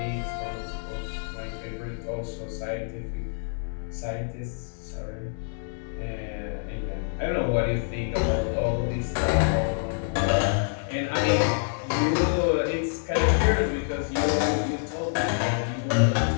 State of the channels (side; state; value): right; silent; digital silence